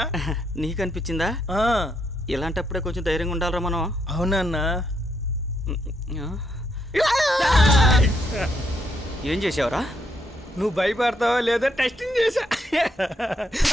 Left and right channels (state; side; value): normal; both; correlation 0.76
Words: నీకు అనిపించిందా? ఇలాంటప్పుడే కొంచెం ధైర్యంగా ఉండాలరా మనం. అవునన్నా. ఏం చేసావురా? నువ్వు భయపడతావా లేదా టెస్టింగ్ చేశా.